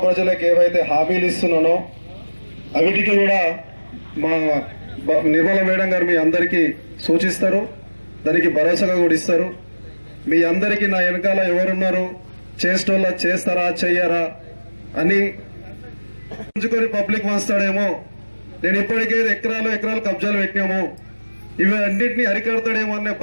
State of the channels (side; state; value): both; inverted; correlation -1.00